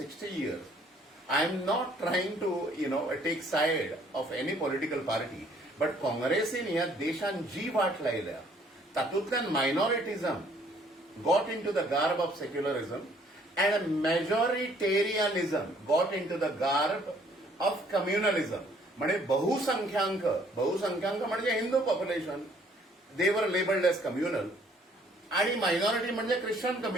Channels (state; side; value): normal; both; correlation 0.62